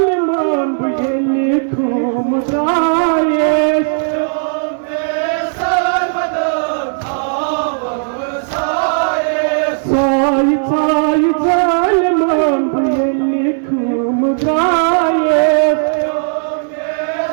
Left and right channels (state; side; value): silent; left; digital silence